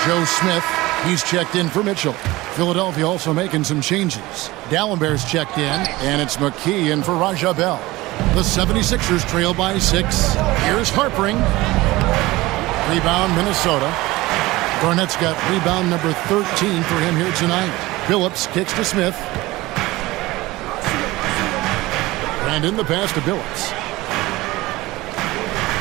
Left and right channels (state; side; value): quieter; left; 19.5 dB